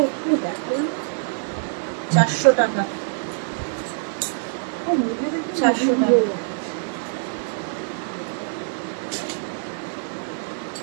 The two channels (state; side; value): silent; left; digital silence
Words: একটু দেখালাম। 400 টাকা। 400 টাকা।